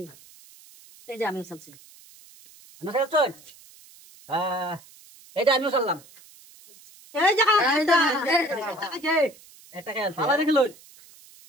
এই যে আমিও চলছি আমি চল এইটা আমিও চললাম এই যে এটা খেল ভালো দেখলো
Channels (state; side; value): noise; right; hiss, 24 dB below the sound